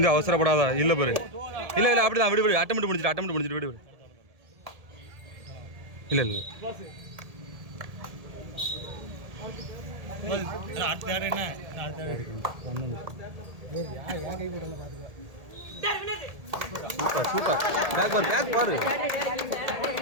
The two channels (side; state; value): left; late; 1.8 ms